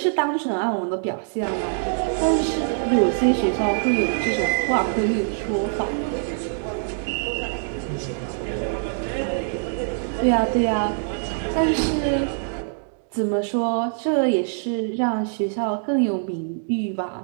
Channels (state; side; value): silent; left; digital silence